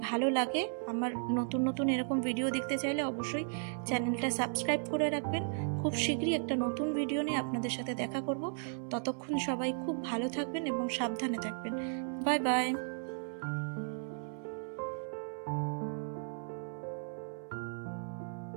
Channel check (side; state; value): left; silent; 54 dB below the other